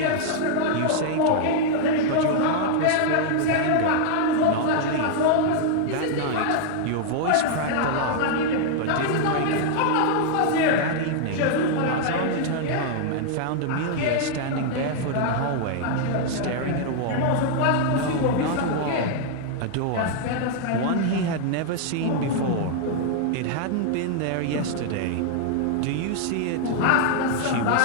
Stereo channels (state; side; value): different; both; correlation -0.01